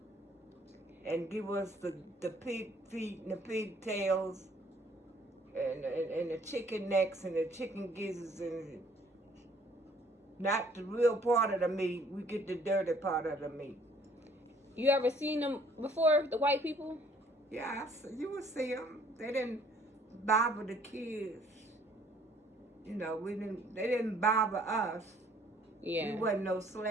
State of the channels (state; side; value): normal; both; correlation 0.59